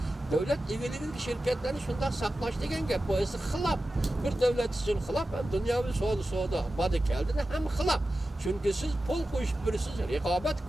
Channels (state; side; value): normal; both; correlation 0.93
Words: Devlet ilgili şirketlerini şundan saklaş degen gap. Bu esi xilap. Bir devlet için xilap hem dünyavi soğuda badı geldiğinde hem xilap. Çünkü siz pul koyup birisiz, rekabet